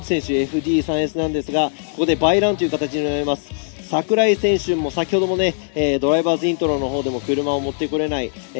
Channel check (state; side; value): silent; right; digital silence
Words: 選手 FD3S なんですが、ここでバイランという形になります。櫻井選手も先ほどもね、ドライバーズイントロの方でも車を持ってこれない、